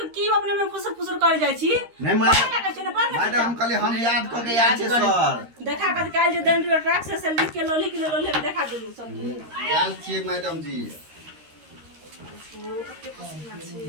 की अपने में फुसर फुसर कर जाय छी नहीं मैडम हम कहले हम याद क के याद छे सर देखा कर काल जे दंड ट्रक से लिख के लोली के लोली में देखा देलू सब याद छे मैडम जी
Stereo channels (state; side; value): late; left; 13 ms